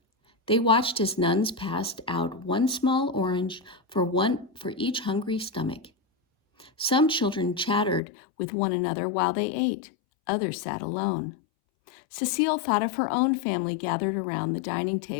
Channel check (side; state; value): right; drops out; at 8.0 s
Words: They watched as nuns passed out 1 small orange for each hungry stomach. Some children chattered with one another while they ate. Others sat alone. Cecile thought of her own family gathered around the dining